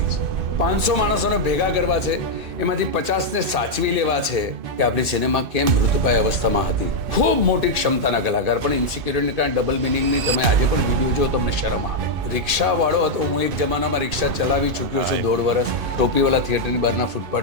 છે 500 માણસોને ભેગા કરવા છે એમાંથી 50ને સાચવી લેવા છે કે આપણી સિનેમા કેમ મૃતપાય અવસ્થામાં હતી ખૂબ મોટી ક્ષમતાના કલાકાર પણ ઇન્સિક્યુરિટીને કારણે ડબલ મિનિંગની તમે આજે પણ વિડીયો જો તમને શરમ આવે રિક્ષાવાળો હતો હું એક જમાનામાં રિક્ષા ચલાવી ચૂક્યો છું 1.5 વર્ષ ટોપીવાળા થિયેટરની બહારના ફૂટપાથ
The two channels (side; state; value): left; late; 2.5 ms